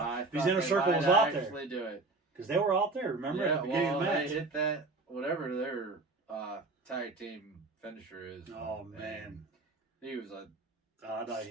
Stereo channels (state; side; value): quieter; left; 3.4 dB